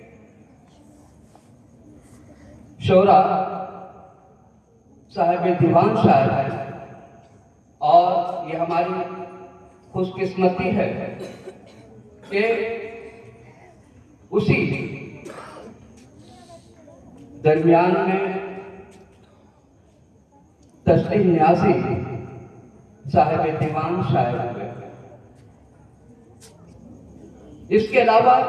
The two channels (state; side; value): identical; both; correlation 1.00